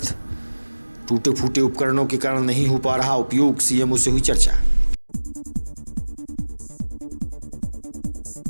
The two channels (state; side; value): inverted; both; correlation -1.00